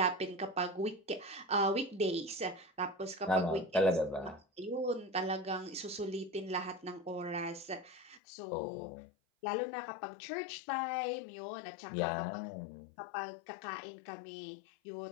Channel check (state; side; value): drops out; right; at 8.2 s